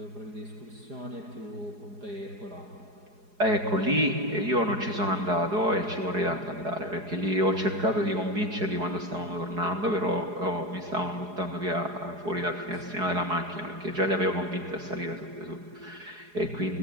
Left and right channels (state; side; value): late; left; 4.8 ms